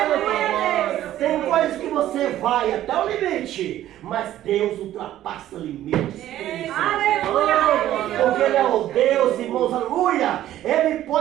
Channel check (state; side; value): quieter; left; 13.0 dB